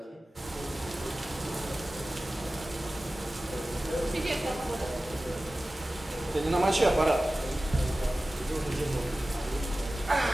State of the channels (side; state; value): both; normal; correlation 0.96